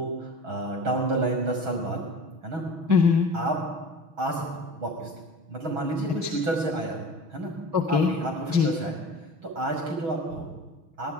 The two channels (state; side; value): late; left; 6.2 ms